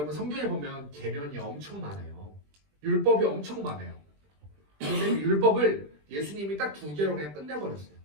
성경에 보면 계명이 엄청 많아요. 율법이 엄청 많아요. 그런데 율법을 예수님이 딱 2개로 그냥 끝내버렸어요.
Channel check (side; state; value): left; late; 20 ms